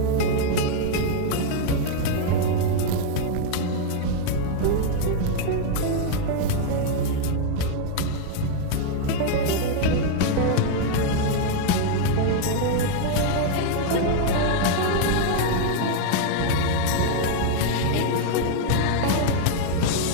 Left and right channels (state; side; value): different; both; correlation 0.00